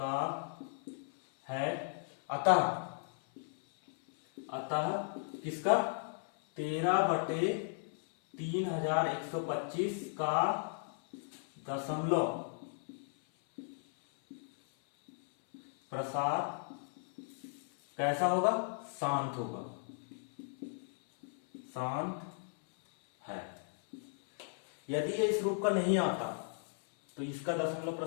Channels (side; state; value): right; silent; 54 dB below the other